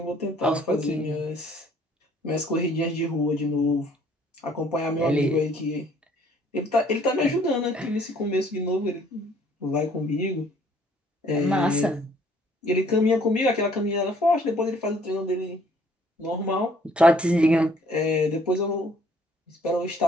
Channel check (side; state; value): both; normal; correlation 0.60